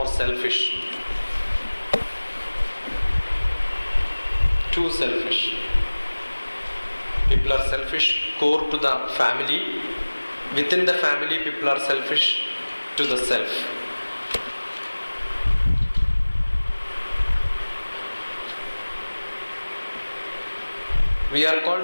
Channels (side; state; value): both; inverted; correlation -1.00